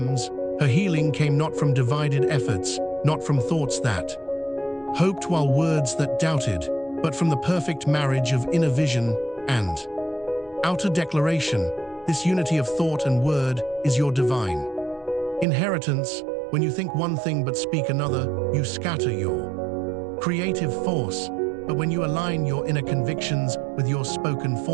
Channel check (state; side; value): drops out; left; at 15.5 s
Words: Her healing came not from divided efforts, not from thoughts that hoped while words that doubted, but from the perfect marriage of inner vision and outer declaration. This unity of thought and word is your divine inheritance. When you think one thing but speak another, you scatter your creative force. But when you align your inner convictions with your spoken